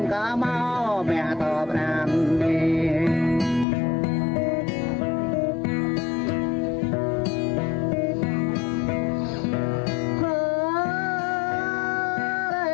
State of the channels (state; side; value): drops out; right; at 3.7 s